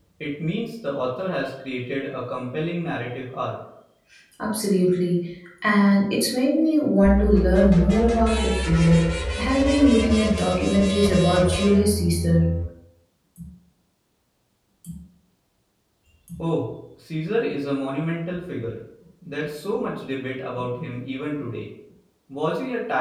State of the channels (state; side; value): identical; both; correlation 1.00